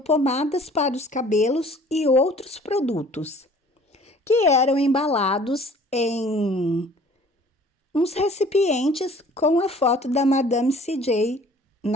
para os cabelos e outros produtos, que eram embalados em uns recipientes com a foto da Madame C.J.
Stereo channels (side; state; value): both; normal; correlation 0.51